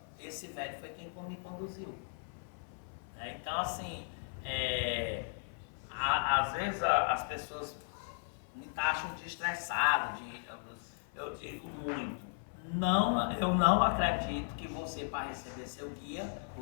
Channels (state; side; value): silent; right; 53 dB below the other